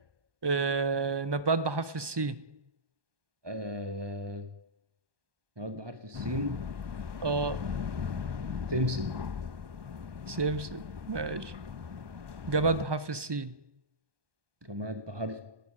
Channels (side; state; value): left; late; 1.2 ms